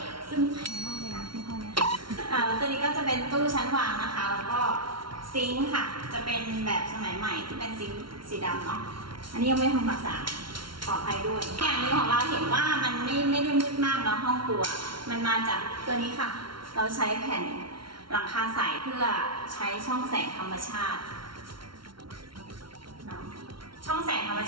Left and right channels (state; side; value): late; left; 0.74 ms